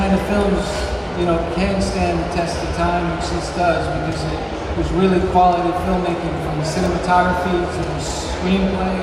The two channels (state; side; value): identical; both; correlation 1.00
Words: of films, you know, can stand the test of time, which this does, because it was really quality filmmaking, from the cinematography to the screenplay